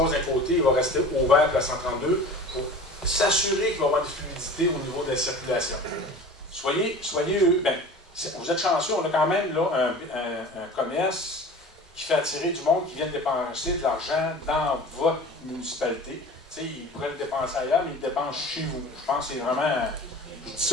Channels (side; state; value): both; normal; correlation 0.39